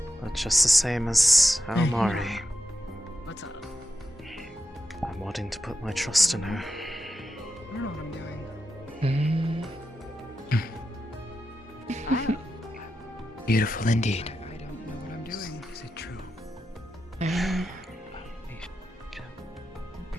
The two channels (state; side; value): normal; both; correlation 0.88